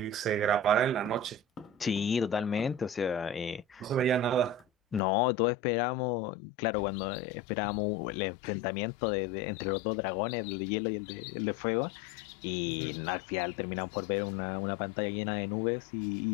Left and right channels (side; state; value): right; drops out; at 5.0 s